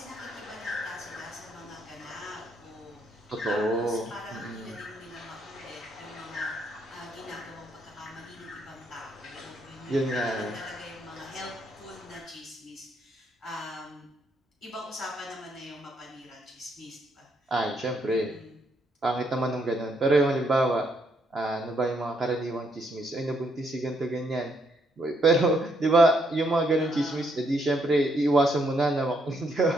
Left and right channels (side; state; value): both; normal; correlation 0.74